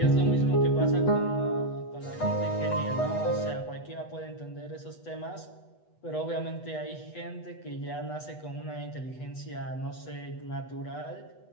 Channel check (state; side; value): late; right; 8.1 ms